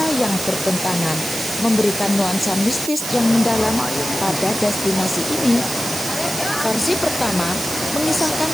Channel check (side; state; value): right; noise; hiss, 6 dB below the sound